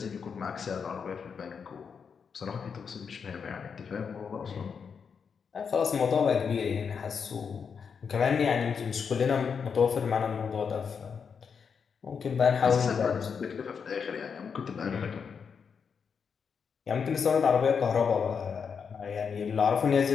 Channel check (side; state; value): right; quieter; 6.3 dB